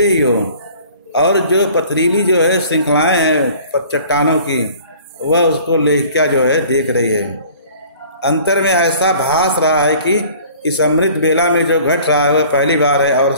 ही हो। और जो पथरीली जो है श्रृंखलाएं हैं चट्टानों की, वह उसको लेखिका जो है देख रही है। अंतर में ऐसा भास रहा है कि इस अमृत बेला में जो घट रहा है वह पहली बार है और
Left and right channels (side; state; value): both; inverted; correlation -0.49